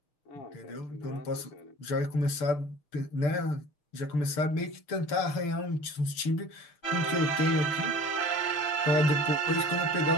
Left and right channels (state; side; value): late; right; 6.8 ms